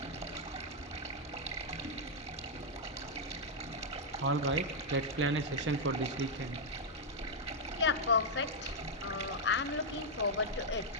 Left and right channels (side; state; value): both; normal; correlation -0.03